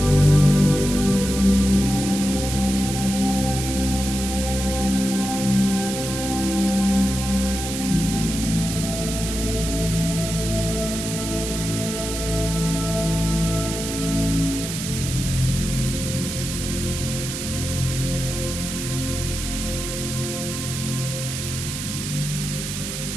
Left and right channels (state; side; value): noise; right; hiss, 6 dB below the sound